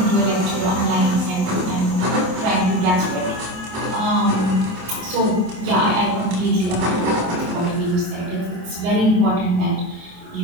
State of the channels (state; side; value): late; left; 27 ms